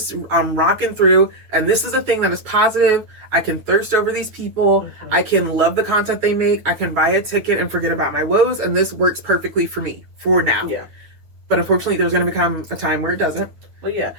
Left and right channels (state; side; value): late; left; 9.3 ms